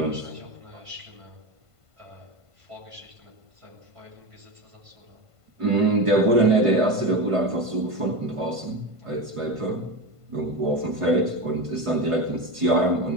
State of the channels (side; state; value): left; late; 1.5 ms